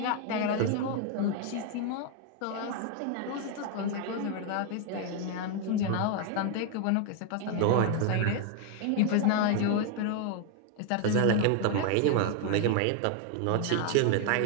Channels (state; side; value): different; both; correlation 0.01